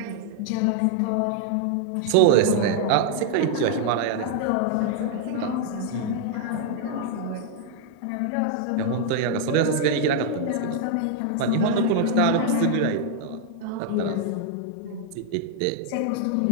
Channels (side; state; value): both; different; correlation 0.00